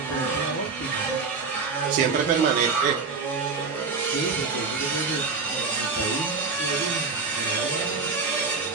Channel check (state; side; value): quieter; left; 4.7 dB